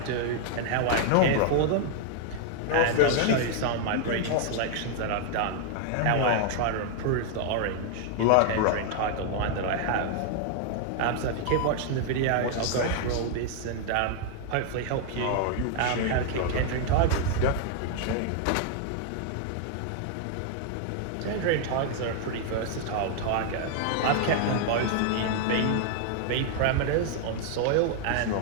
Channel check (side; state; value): both; different; correlation 0.00